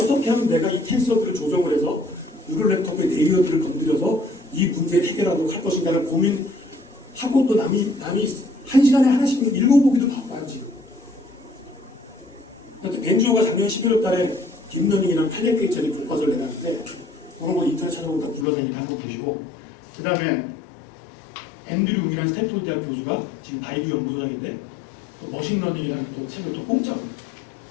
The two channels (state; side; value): drops out; right; at 18.4 s